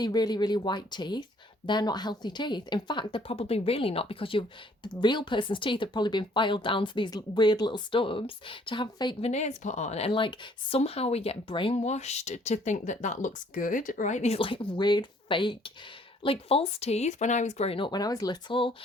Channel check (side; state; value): both; normal; correlation 0.61